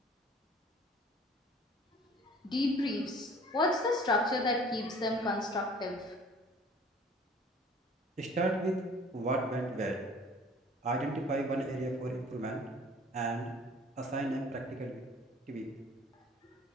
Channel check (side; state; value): both; normal; correlation 0.50